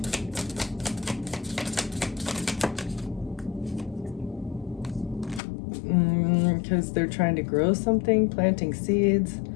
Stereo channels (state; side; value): drops out; right; at 5.4 s